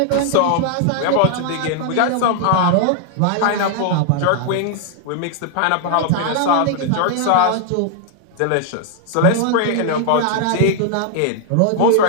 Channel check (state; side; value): different; both; correlation 0.00